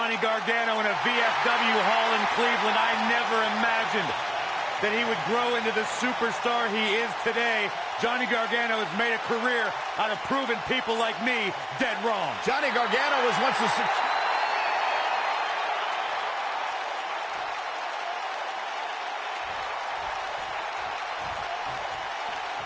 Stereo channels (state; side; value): identical; both; correlation 1.00